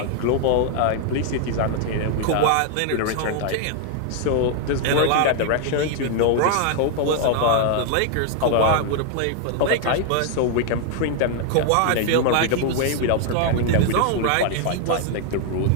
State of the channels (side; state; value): both; different; correlation 0.00